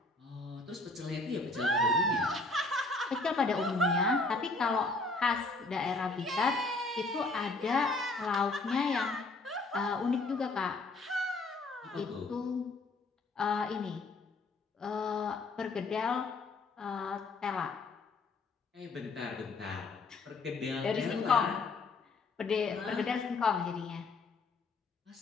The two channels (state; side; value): quieter; right; 3.4 dB